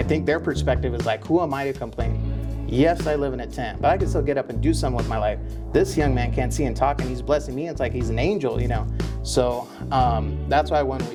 think their perspective is like, who am I to complain? Yes, I live in a tent, but I can still get up and do something with my life. This young man can't see and talk, and he's blessing me. It's like he's an angel, you know? So that's why when we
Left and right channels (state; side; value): identical; both; correlation 1.00